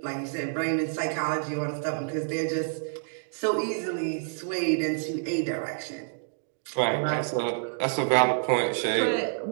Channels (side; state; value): left; silent; digital silence